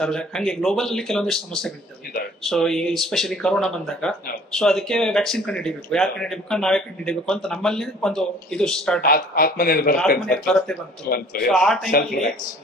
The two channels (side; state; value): both; normal; correlation 0.52